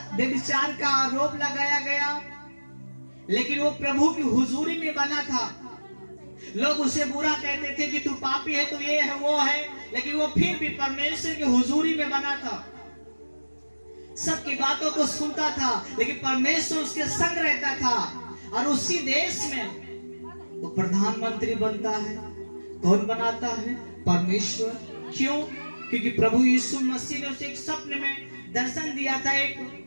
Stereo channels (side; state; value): both; inverted; correlation -1.00